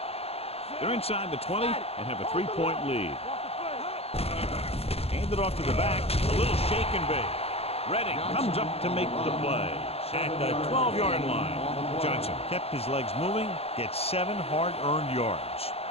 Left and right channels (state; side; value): late; right; 0.29 ms